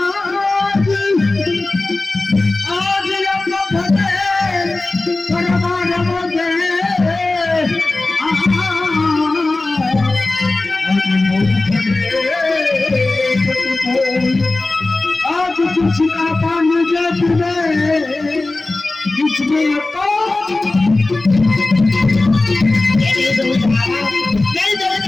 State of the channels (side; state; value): right; quieter; 3.1 dB